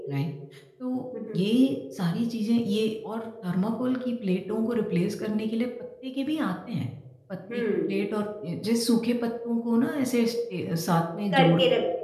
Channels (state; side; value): identical; both; correlation 1.00